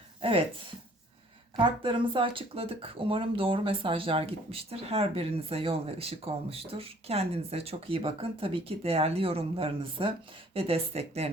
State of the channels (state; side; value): normal; both; correlation 0.57